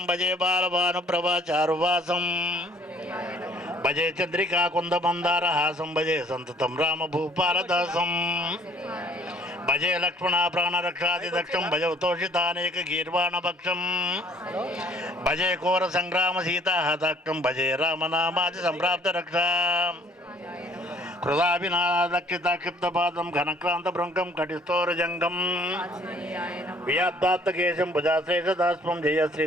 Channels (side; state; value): both; normal; correlation 0.57